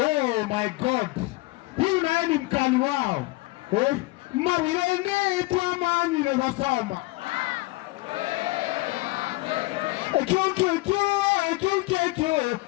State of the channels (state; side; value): quieter; right; 21.7 dB